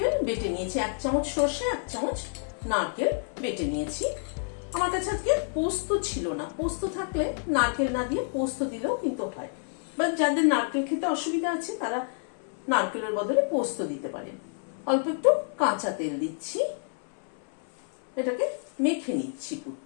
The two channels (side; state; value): right; silent; 59 dB below the other